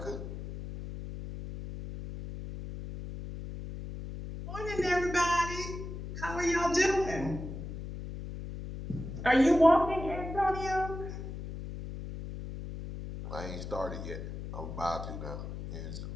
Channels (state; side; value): noise; left; hum, 8 dB below the sound